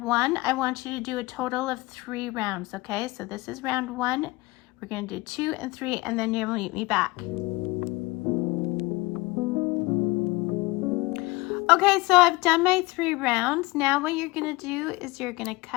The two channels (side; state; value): right; quieter; 22.1 dB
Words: 1. I want you to do a total of 3 rounds, okay? So this is round 1. We're going to do 2 and 3, and then you'll meet me back. Okay, so I've done my 3 rounds. Now what you're going to do is you're going to